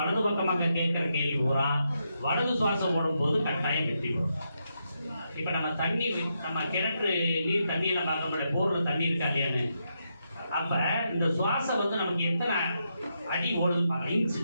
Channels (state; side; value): inverted; both; correlation -0.82